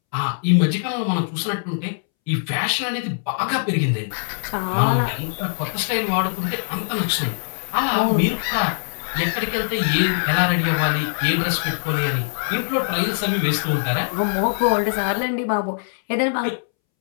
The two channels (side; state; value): right; silent; 64 dB below the other